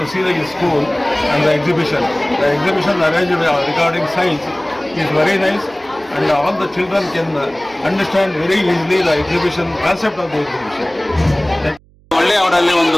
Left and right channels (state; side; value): noise; right; hum, 30 dB below the sound